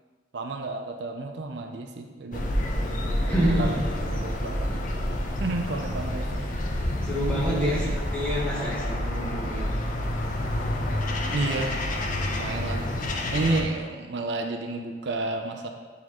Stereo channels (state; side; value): normal; both; correlation 0.66